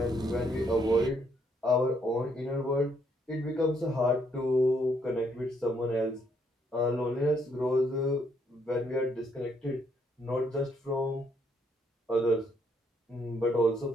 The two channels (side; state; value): both; normal; correlation 0.71